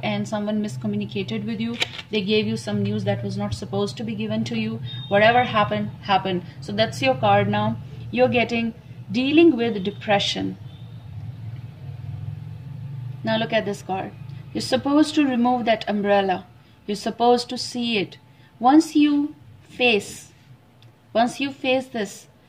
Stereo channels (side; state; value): both; identical; correlation 1.00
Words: and someone miscommunicated with you. They gave you some news that was not supposed to be given to you. Whatever happened. So that's your card now. You're getting dealing with depression. Now look at this card. You're supposed to remove that umbrella. You're supposed to see it. Once you face this,